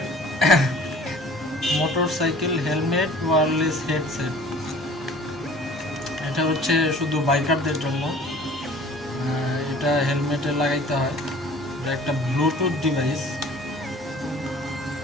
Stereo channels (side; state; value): both; normal; correlation 0.49